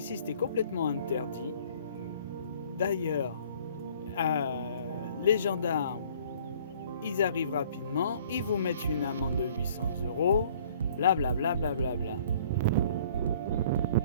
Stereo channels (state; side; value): inverted; both; correlation -0.55